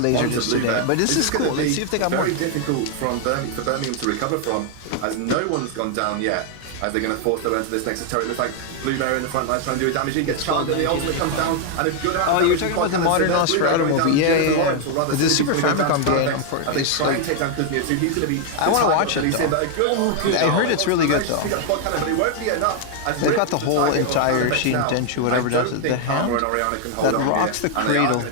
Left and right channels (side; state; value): both; different; correlation 0.00